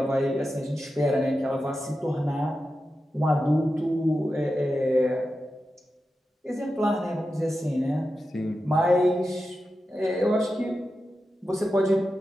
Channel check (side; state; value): both; normal; correlation 0.91